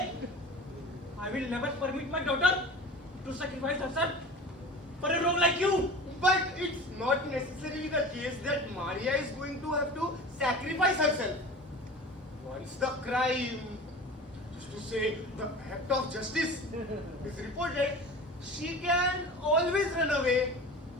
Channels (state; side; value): normal; both; correlation 0.36